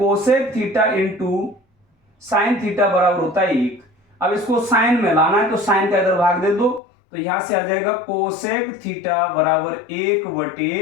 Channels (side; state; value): right; drops out; at 6.8 s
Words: theta into sine theta बराबर होता है 1। अब इसको साइन में लाना है तो साइन का इधर भाग दे दो, तो यहां से आ जाएगा कोसेक थीटा बराबर 1